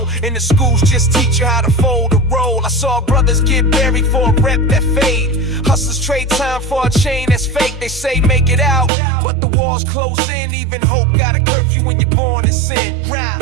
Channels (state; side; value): drops out; left; at 8.9 s